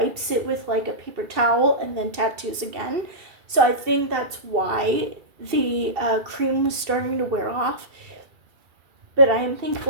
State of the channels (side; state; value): left; late; 2.7 ms